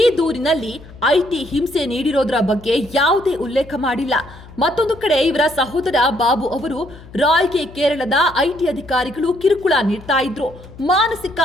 ದೂರಿನಲ್ಲಿ ಐಟಿ ಹಿಂಸೆ ನೀಡಿರೋದ್ರ ಬಗ್ಗೆ ಯಾವುದೇ ಉಲ್ಲೇಖ ಮಾಡಿಲ್ಲ. ಮತ್ತೊಂದು ಕಡೆ ಇವರ ಸಹೋದರ ಬಾಬು ಅವರು ರಾಯ್ಗೆ ಕೇರಳದ ಐಟಿ ಅಧಿಕಾರಿಗಳು ಕಿರುಕುಳ ನೀಡ್ತಾ ಇದ್ರು, ಮಾನಸಿಕ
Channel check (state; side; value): noise; left; hum, 19 dB below the sound